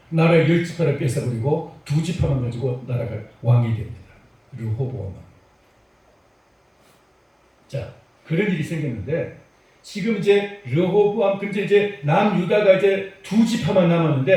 나라의 10지파를 뺏어버리고 2지파만 가지고 나라가 왕이 됩니다. 르호보암 왕. 자, 그런 일이 생겼는데 지금 이제 르호보암 근데 이제 남유다가 이제 2지파만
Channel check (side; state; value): both; identical; correlation 1.00